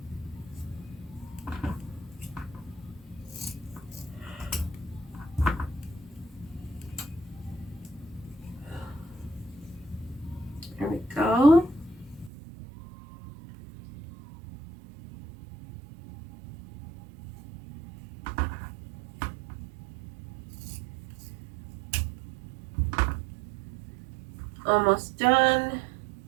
There we go. Almost done.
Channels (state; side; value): drops out; left; at 12.3 s